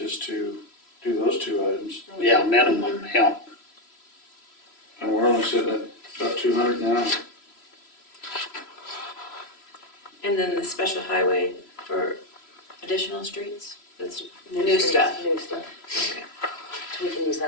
to do those two items. Yeah, minimum, yeah. And we're only sitting at about 200 now. And then the special highway for additional streets, that's new streets, stuff. New stuff. Okay. We can use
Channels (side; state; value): right; late; 3.0 ms